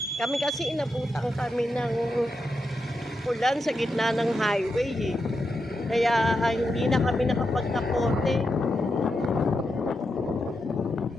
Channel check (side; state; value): both; normal; correlation 0.86